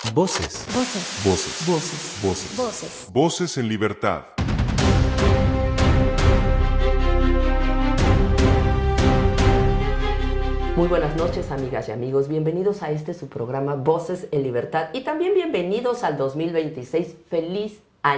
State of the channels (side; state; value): both; identical; correlation 1.00